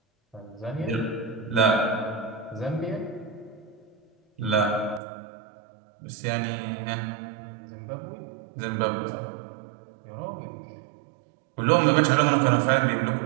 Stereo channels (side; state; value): left; drops out; at 5.0 s